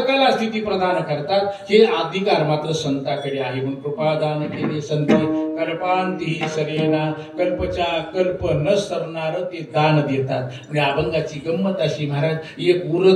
स्थिती प्रदान करतात. हे अधिकार मात्र संताकडे आहे. म्हणून कृपादान केले संती कल्पांतीही सरेना. कल्पच्या कल्प न सरणार ते दान देतात. म्हणजे अभंगाची गंमत अशी महाराज, एक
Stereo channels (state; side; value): identical; both; correlation 1.00